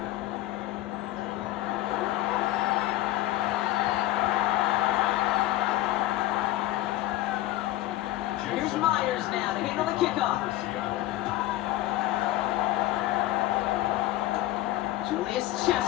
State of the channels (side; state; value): right; quieter; 15.6 dB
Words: Here's Myers now to handle the kickoff. Julius